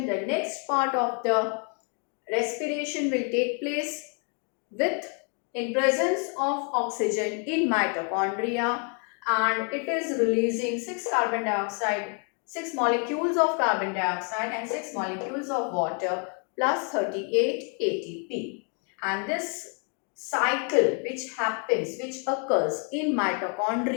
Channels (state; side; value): quieter; right; 39.9 dB